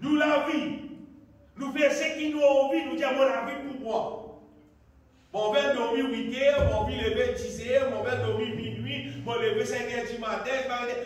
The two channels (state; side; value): identical; both; correlation 1.00